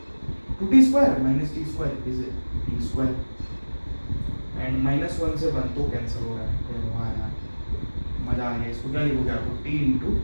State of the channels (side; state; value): both; inverted; correlation -1.00